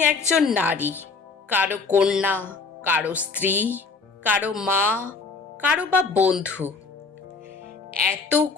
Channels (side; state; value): right; quieter; 4.5 dB